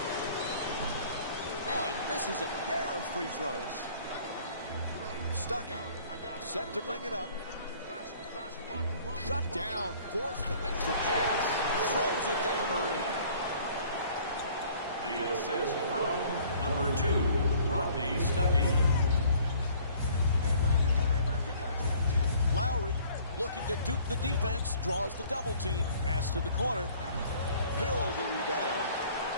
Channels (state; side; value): inverted; both; correlation -0.54